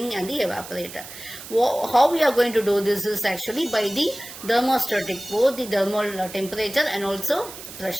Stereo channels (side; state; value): right; noise; hiss, 14 dB below the sound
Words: and the evaporator. How we are going to do this is actually by the thermostatic, both the thermal temperature and also